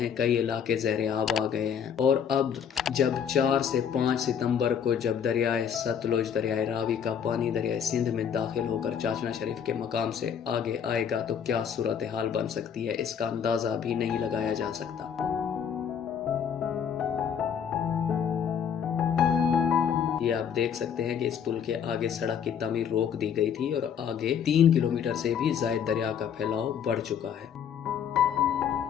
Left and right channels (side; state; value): right; quieter; 8.0 dB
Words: कई इलाके ज़ेरे आब आ गए हैं। और अब जब 4 से 5 सितंबर को जब दरियाए सतलुज, दरियाए रावी का पानी दरियाए सिंध में दाखिल होकर चाचना शरीफ के मकाम से आगे आएगा तो क्या सूरत हाल बन सकती है, इसका अंदाज़ा भी नहीं लगाया जा सकता। ये आप देख सकते हैं कि इस पुल के आगे सड़क की तामीर रोक दी गई थी और आगे 3 किलोमीटर से भी ज़ायद दरिया का फैलाव बढ़ चुका है।